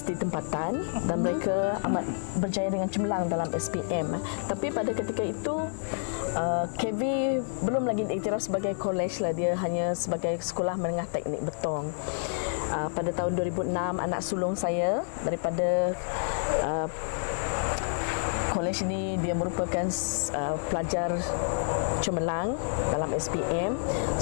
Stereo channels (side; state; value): right; silent; digital silence